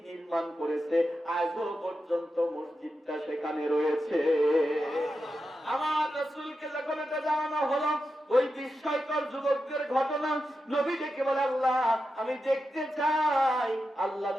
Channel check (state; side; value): normal; both; correlation 0.89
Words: নির্মাণ করেছে। আজও পর্যন্ত মসজিদটা সেখানে রয়েছে। আমার রাসূলকে যখন এটা জানানো হলো, ওই বিস্ময়কর যুবকদের ঘটনা, নবী ডেকে বলে, আল্লাহ আমি দেখতে চাই। আল্লাহ